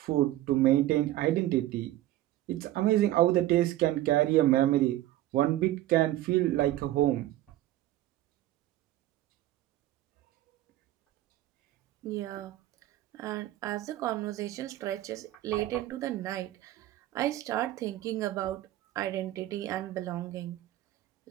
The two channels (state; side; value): quieter; left; 14.8 dB